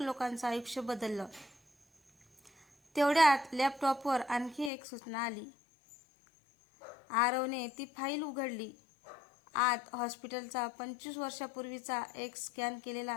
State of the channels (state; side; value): drops out; right; at 4.7 s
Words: लोकांचं आयुष्य बदललं. तेवढ्यात लॅपटॉपवर आणखी एक सूचना आली. आरवने ती फाईल उघडली. आत हॉस्पिटलचा 25 वर्षापूर्वीचा एक स्कॅन